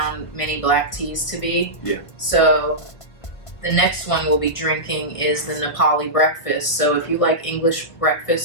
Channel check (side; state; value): right; late; 1.3 ms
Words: many black teas to be. Yeah. So the next one we'll be drinking is the Nepali breakfast. So if you like English